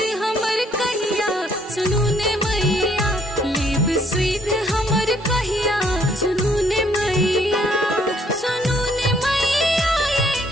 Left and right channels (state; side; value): normal; both; correlation 0.66